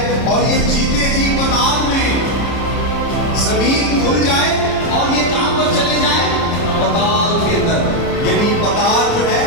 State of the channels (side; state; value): right; late; 30 ms